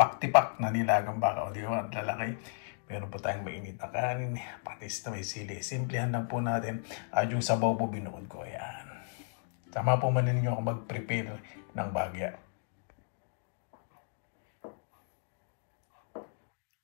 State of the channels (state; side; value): silent; right; digital silence